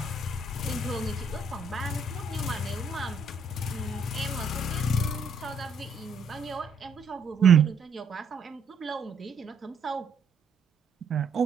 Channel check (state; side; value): quieter; left; 3.6 dB